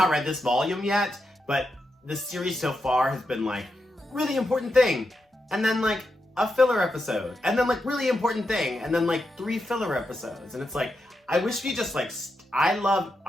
read this volume yet, but the series so far has been like really important thing, and then like a filler episode, and then like really important thing, and then like 3 filler episodes, and it's like I wish we just like I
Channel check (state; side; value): normal; both; correlation 0.86